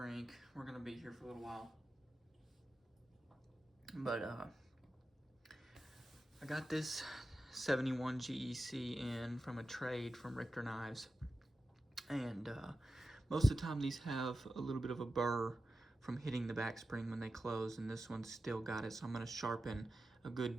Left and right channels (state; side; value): normal; both; correlation 0.92